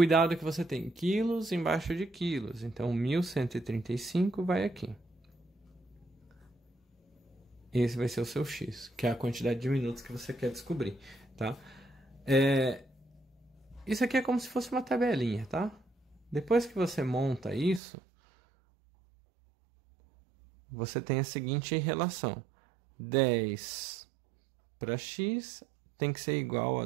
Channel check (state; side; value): drops out; left; at 17.8 s